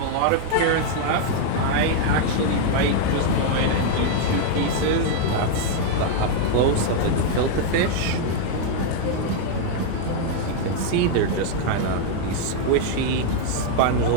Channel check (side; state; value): both; different; correlation 0.00